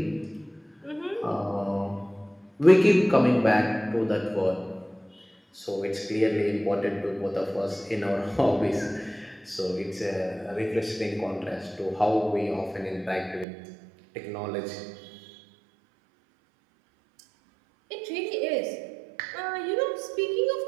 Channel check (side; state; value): left; drops out; at 13.5 s